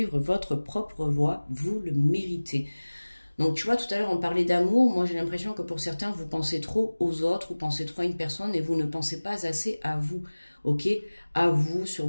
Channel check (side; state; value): both; inverted; correlation -1.00